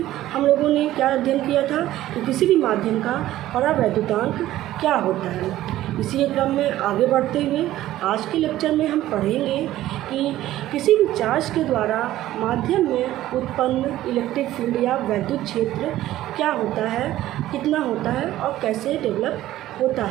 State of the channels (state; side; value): quieter; left; 14.4 dB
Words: हम लोगों ने क्या अध्ययन किया था कि किसी भी माध्यम का परावैद्युतांक क्या होता है। इसी क्रम में आगे बढ़ते हुए आज के लेक्चर में हम पढ़ेंगे कि किसी भी चार्ज के द्वारा माध्यम में उत्पन्न इलेक्ट्रिक फील्ड या वैद्युत क्षेत्र क्या होता है, कितना होता है और कैसे डेवलप होता